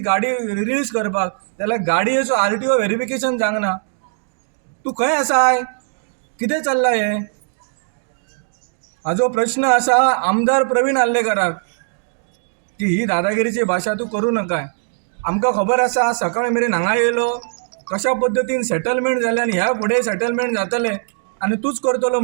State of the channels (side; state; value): left; silent; digital silence